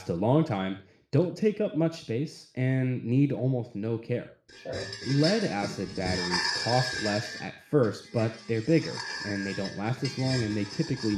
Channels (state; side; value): identical; both; correlation 1.00